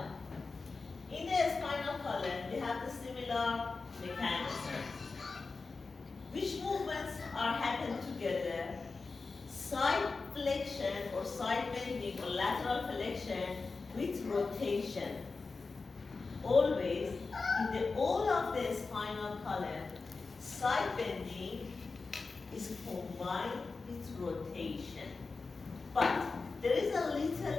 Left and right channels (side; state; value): right; quieter; 4.1 dB